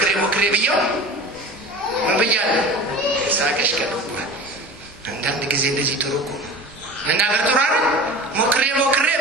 ሞክሬ ብየው ምን ብያለሁ? ሳቀሽ ከልኩማ አንዳንድ ጊዜ እንደዚህ ጥሩ እኮ መናገር ጥሩ አይደል? ሞክሬ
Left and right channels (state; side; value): normal; both; correlation 0.36